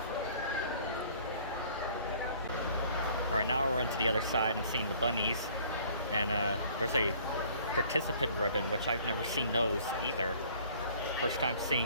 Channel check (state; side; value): inverted; both; correlation -0.55